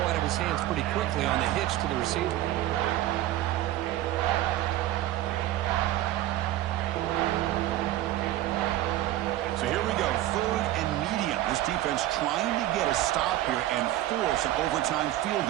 out of his hands pretty quickly on the hitch to the receiver. So here we go, 3rd and medium. This defense trying to get a stop here and force an overtime field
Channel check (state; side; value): quieter; left; 14.5 dB